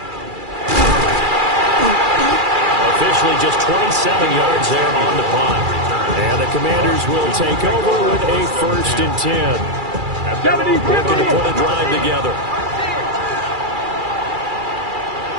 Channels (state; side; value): late; left; 2.4 ms